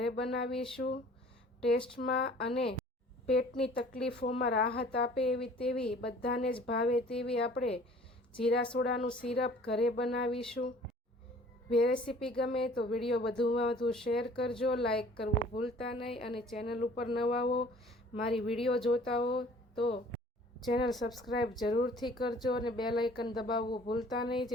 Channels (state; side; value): normal; both; correlation 0.51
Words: બનાવીશું। ટેસ્ટમાં અને પેટની તકલીફોમાં રાહત આપે તેવી બધાને જ ભાવે તેવી આપણે જીરા સોડાનું સિરપ ઘરે બનાવીશું। રેસીપી ગમે તો વિડીયો વધુમાં વધુ શેર કરજો, લાઈક કરવું ભૂલતા નહીં અને ચેનલ ઉપર નવા હો, મારી વિડીયો જોતા હો તો ચેનલ સબસ્ક્રાઈબ જરૂરથી કરજો અને બેલ આઇકન દબાવવું ભૂલતા નહીં,